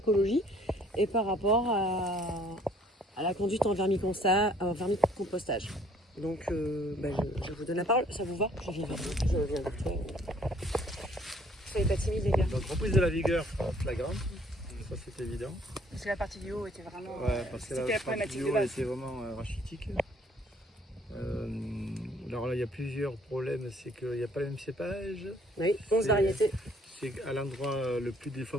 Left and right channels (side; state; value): both; normal; correlation 0.60